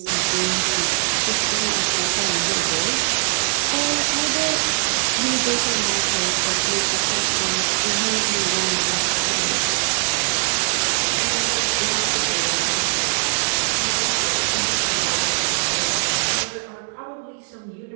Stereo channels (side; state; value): left; silent; 65 dB below the other